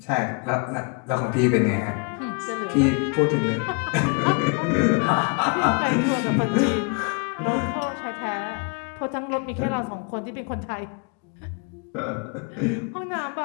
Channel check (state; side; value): quieter; right; 34.1 dB